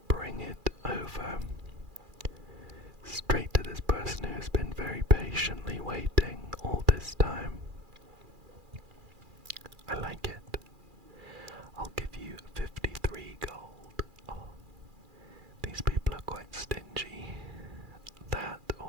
bring it over straight to this person who has been very patiently waiting all this time. I like it. I'll give you 53 gold. Oh, these people are quite stingy. That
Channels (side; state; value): left; late; 2.4 ms